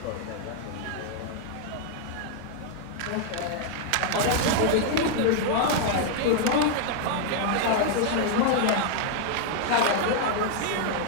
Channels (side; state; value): both; different; correlation 0.00